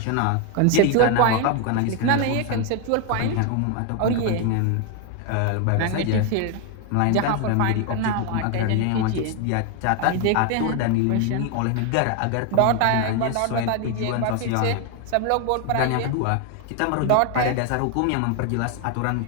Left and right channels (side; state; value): both; different; correlation 0.01